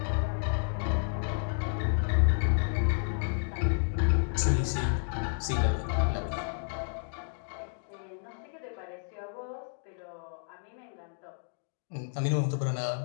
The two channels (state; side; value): silent; right; digital silence